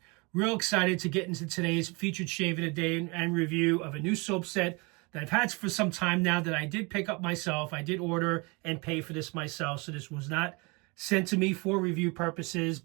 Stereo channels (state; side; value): quieter; left; 28.4 dB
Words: Real excited to get into today's featured shave of the day and review of a new soap set that I've had for some time now that I did pick up myself. I did order and pay for this myself, so this was not sent to me for review purposes,